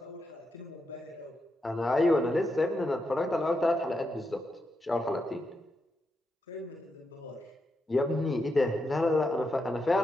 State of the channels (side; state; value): both; normal; correlation 0.84